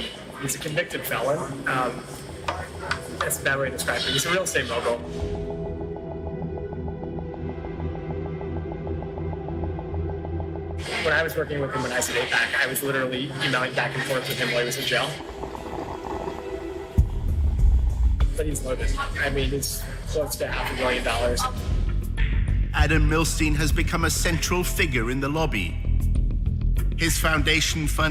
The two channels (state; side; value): identical; both; correlation 1.00